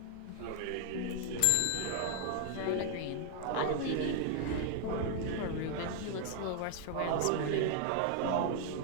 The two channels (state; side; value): different; both; correlation 0.00